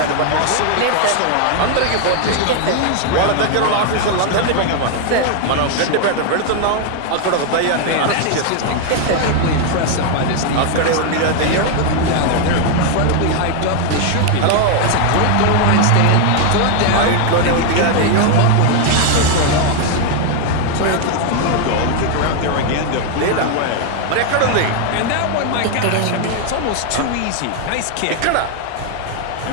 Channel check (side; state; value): both; different; correlation 0.00